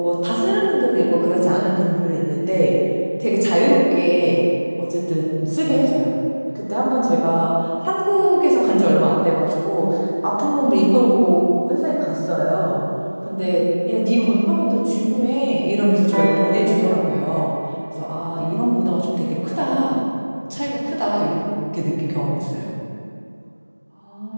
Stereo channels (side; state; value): both; inverted; correlation -1.00